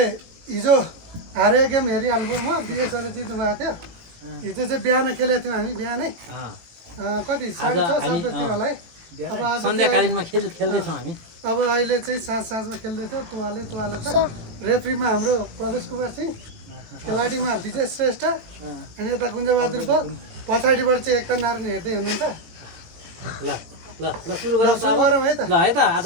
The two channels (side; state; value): left; late; 18 ms